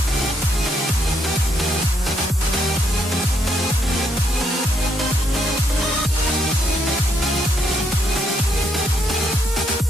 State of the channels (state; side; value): normal; both; correlation 0.75